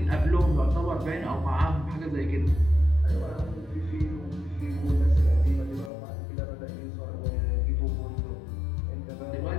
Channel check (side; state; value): right; drops out; at 5.9 s